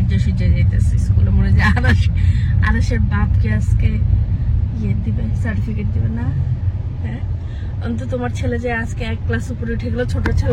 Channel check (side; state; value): both; identical; correlation 1.00